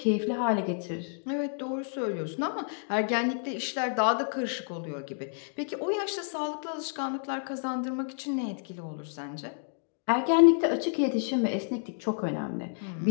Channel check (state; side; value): silent; right; digital silence